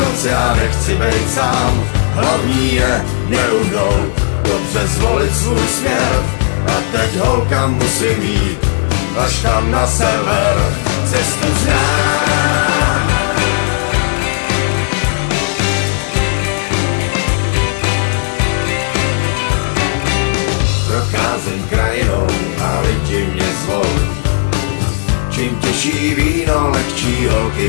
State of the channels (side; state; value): right; silent; digital silence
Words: já nechci být sám. Hlavní je neuhnout, dobře zvolit svůj směr. A teď holka musím jít, až tam na sever. Cestu znám. Procházím krajinou a lidi mě zvou. Čím těžší víno, lehčí